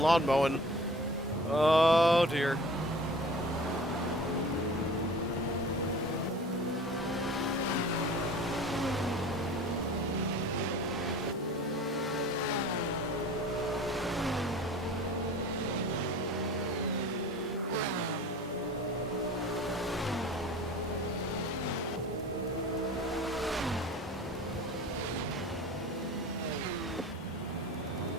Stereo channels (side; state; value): both; normal; correlation 0.42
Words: mowing. Oh dear.